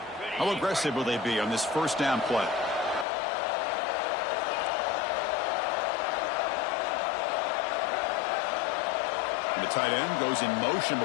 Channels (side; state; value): right; drops out; at 3.1 s